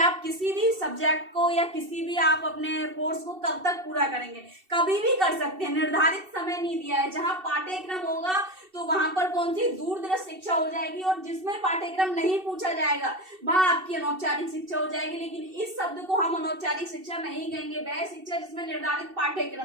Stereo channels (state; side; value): late; left; 2.7 ms